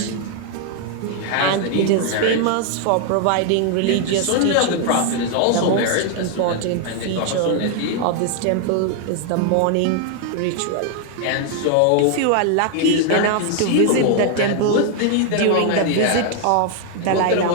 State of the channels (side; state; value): both; different; correlation 0.00